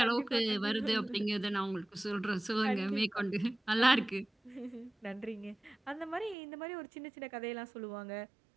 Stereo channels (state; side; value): drops out; left; at 6.4 s